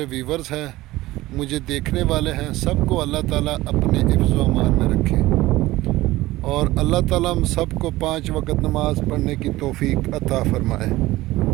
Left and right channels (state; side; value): quieter; left; 17.8 dB